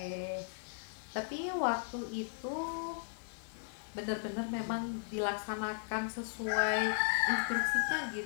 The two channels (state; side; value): silent; right; digital silence